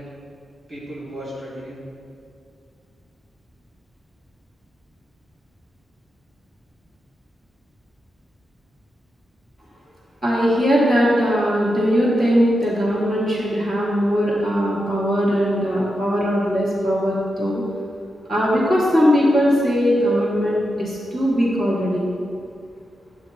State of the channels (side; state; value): both; normal; correlation 0.87